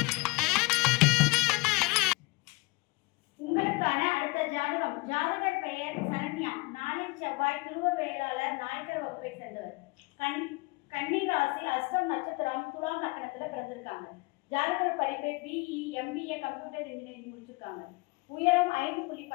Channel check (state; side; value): quieter; right; 26.0 dB